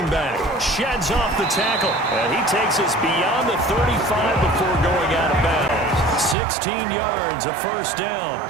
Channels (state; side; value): drops out; left; at 6.4 s